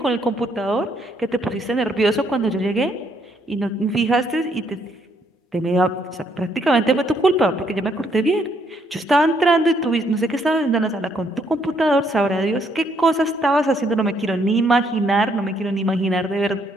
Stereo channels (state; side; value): normal; both; correlation 0.71